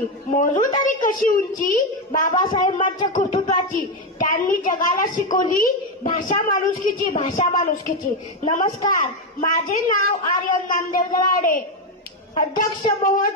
मोजू तरी कशी उंची बाबासाहेबांच्या कर्तृत्वाची। त्यांनी जगाला शिकवली भाषा माणुसकीची। नमस्कार, माझे नाव आर्यन नामदेव दराडे। अध्यक्ष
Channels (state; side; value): normal; both; correlation 0.08